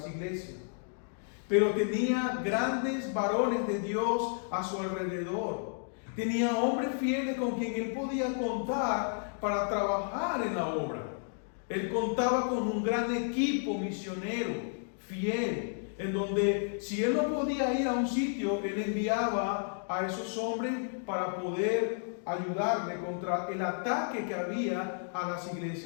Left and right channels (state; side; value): silent; right; digital silence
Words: iglesias, pero tenía grandes varones de Dios a su alrededor. Tenía hombres fieles con quien él podía contar para trabajar en la obra. Él contaba con un gran equipo misionero, fiel, en donde si él no podía ir a un sitio, él enviaba a esos hombres para poder ayudarle contra el ataque que había a las